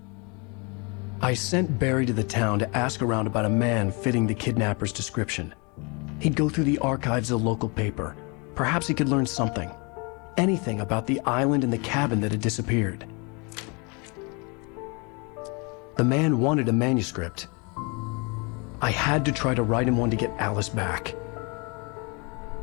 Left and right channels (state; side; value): quieter; right; 31.2 dB